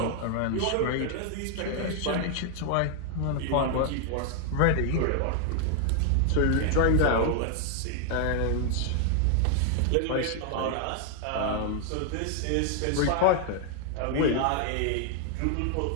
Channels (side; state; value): both; different; correlation 0.00